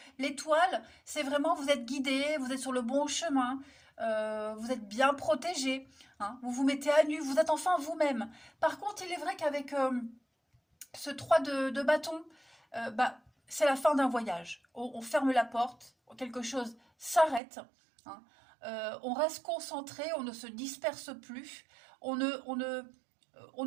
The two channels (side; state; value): left; drops out; at 17.4 s